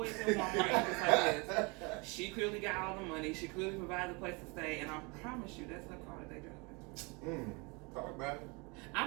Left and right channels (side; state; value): left; quieter; 29.2 dB